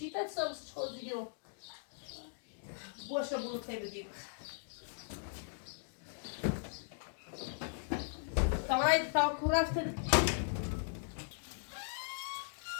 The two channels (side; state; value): right; silent; digital silence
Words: تا سامسش خود دیگه رو باشه برو تی بدیم تا برای تا کو رفته ده